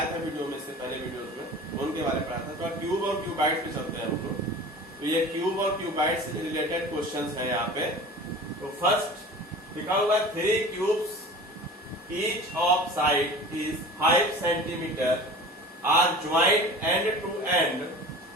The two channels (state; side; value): normal; both; correlation 0.39